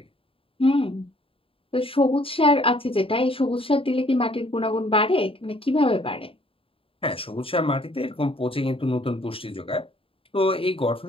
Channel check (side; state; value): right; late; 0.27 ms